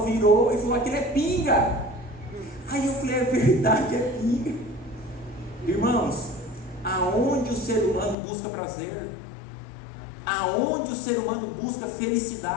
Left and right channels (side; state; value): right; drops out; at 8.2 s